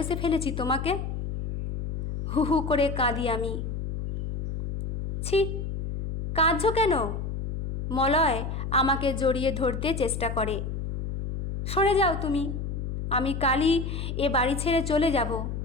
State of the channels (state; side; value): noise; left; hum, 4 dB below the sound